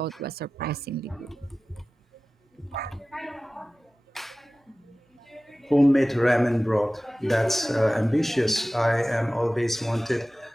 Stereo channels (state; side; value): normal; both; correlation 0.97